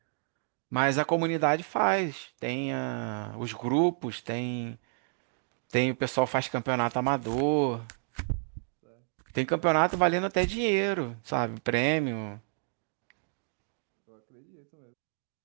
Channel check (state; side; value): silent; left; 58 dB below the other